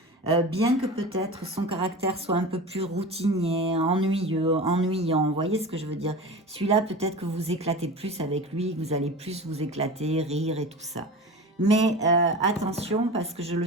Bien que peut-être son caractère soit un peu plus routinier, ennuyant, vous voyez ce que je veux dire? Celui-là, peut-être que vous éclatez plus avec lui, que vous allez plus vous éclater, rire et tout ça. Mais attention, parce que je ne le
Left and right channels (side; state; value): both; normal; correlation 0.32